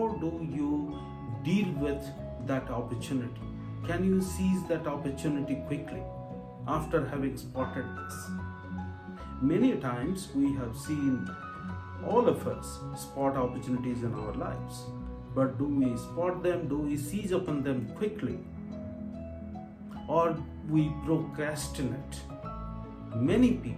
do you deal with that opportunity. Can you seize that opportunity quickly after having spotted this? Many times we have seen all of us spot opportunities in our lives, but do we spot them? Do we seize upon them quickly? Or we procrastinate? Many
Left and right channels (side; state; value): both; identical; correlation 1.00